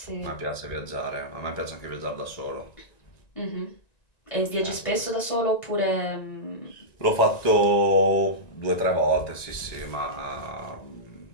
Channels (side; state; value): right; late; 1.9 ms